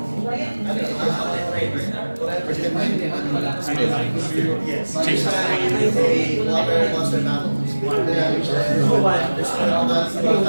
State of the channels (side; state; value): both; inverted; correlation -1.00